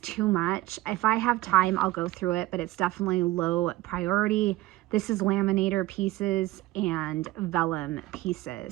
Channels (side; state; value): left; quieter; 17.2 dB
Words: too much. If I have time, I'll go through it, but it's definitely low priority. This is laminator pieces and vellum